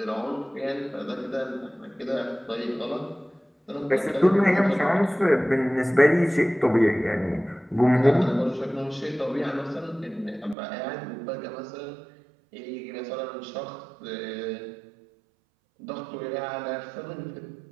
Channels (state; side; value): drops out; left; at 10.6 s